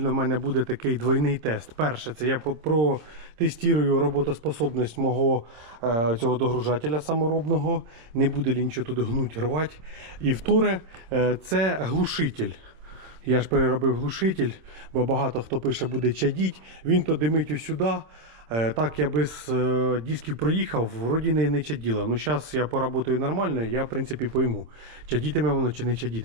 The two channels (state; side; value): late; left; 26 ms